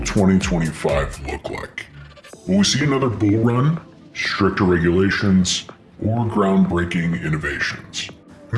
look like? Will we see another bull run, stricter regulations, or groundbreaking innovations? In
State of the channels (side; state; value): both; identical; correlation 1.00